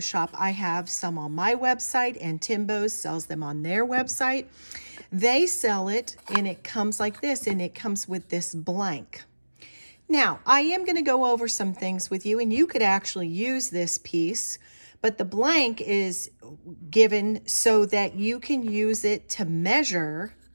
I have some on my website, and Timbo sells them on their website. They sell it, and it comes like this, and it comes with this blank. Now, I am going to go over some things with you, and you could actually use this piece, but the blank is given so that you can use it to measure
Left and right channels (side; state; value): both; inverted; correlation -1.00